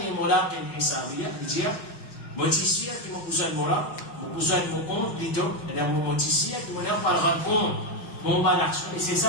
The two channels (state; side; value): late; right; 6.3 ms